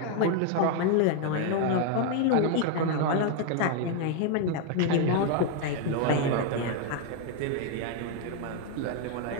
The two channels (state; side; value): different; both; correlation 0.01